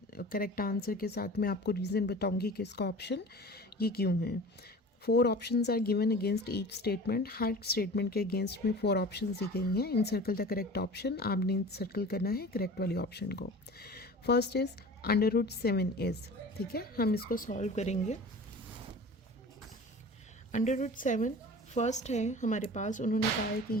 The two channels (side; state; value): both; normal; correlation 0.39